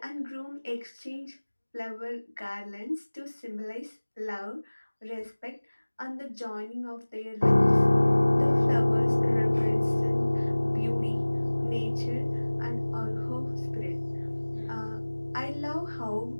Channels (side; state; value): both; inverted; correlation -1.00